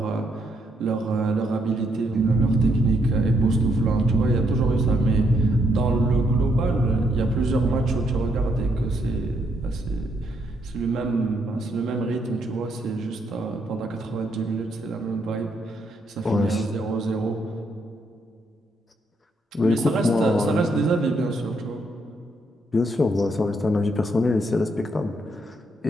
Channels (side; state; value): both; normal; correlation 0.75